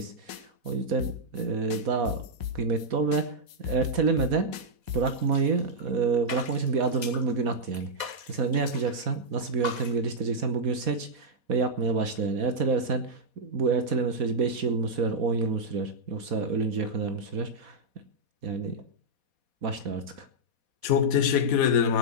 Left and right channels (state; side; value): late; left; 4.2 ms